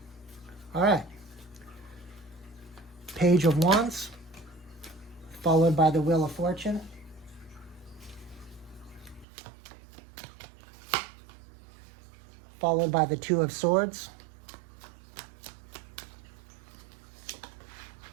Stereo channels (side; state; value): left; drops out; at 9.2 s